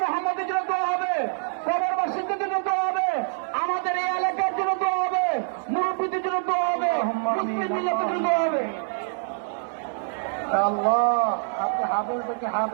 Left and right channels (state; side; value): silent; left; 61 dB below the other